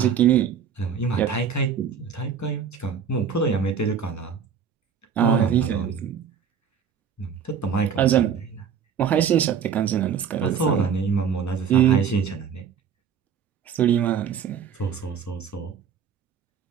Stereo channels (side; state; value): left; quieter; 7.3 dB